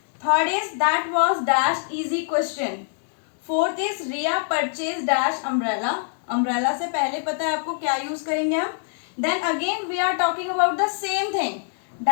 Third is that was dash easy question. Fourth is Riya purchase dash umbrella, umbrella से पहले पता है आपको क्या यूज करेंगे हम। Then again we are talking about the same thing,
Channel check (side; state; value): right; silent; digital silence